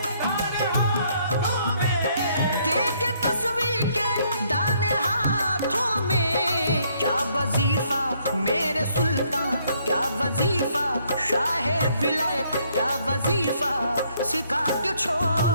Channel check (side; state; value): both; inverted; correlation -0.68